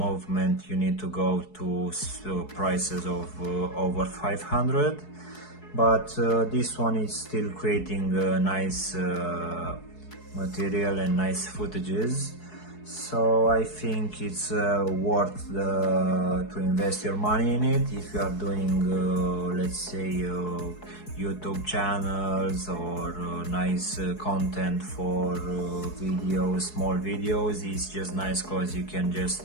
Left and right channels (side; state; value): right; late; 4.7 ms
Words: you need to go to prices of over 500. But this one is still creating nice material and nice footages, so I think it's worth to invest your money in it if you are doing let's say YouTube channels or nice content for videos, small videos. It's just nice because you can just